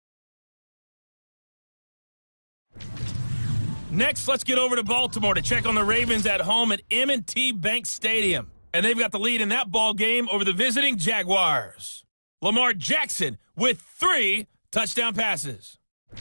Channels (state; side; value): inverted; both; correlation -1.00